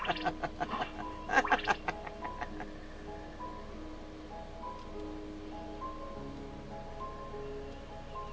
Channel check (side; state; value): both; identical; correlation 1.00